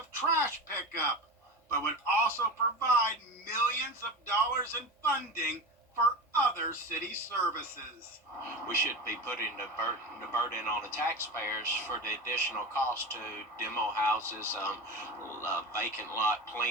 trash pickup, but would also provide millions of dollars in funding for other city services. We should be putting the burden on the taxpayers for the additional cost to demo houses, vacant lot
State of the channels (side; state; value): both; normal; correlation 0.27